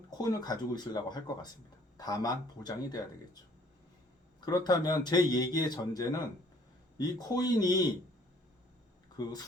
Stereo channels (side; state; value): both; normal; correlation 0.59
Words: 코인을 가지고 있으려고 할 것 같습니다. 다만 보장이 돼야 되겠죠. 그렇다면 제 얘기의 전제는 이 코인이 그